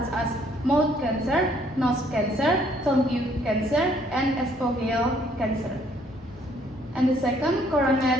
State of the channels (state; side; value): normal; both; correlation 0.64